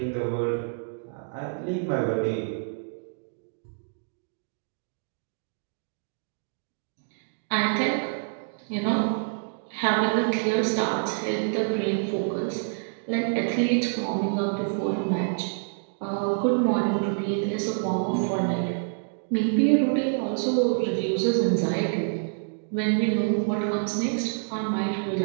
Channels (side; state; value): left; silent; digital silence